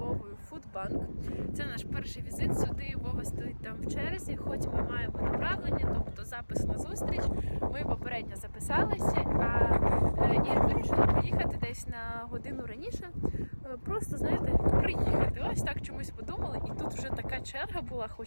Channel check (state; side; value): inverted; both; correlation -1.00